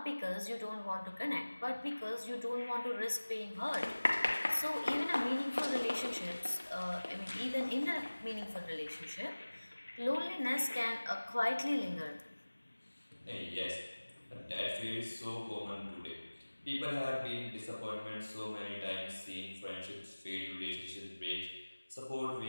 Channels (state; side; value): inverted; both; correlation -1.00